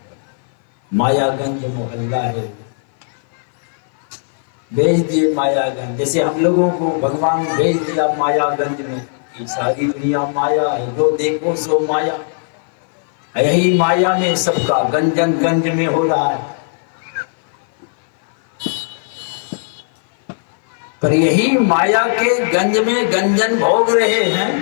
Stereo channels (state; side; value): silent; right; 56 dB below the other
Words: मायागंज मोहल्ला है, भेज दिए मायागंज। जैसे हम लोगों को भगवान भेज दिया मायागंज में, ये सारी दुनिया माया है, जो देखो सो माया। यही माया में सबका गंजन गंज में हो रहा है। पर यही माया के गंज में गंजन भोग रहे हैं।